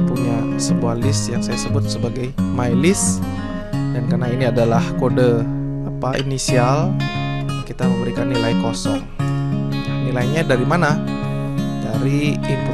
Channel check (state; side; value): identical; both; correlation 1.00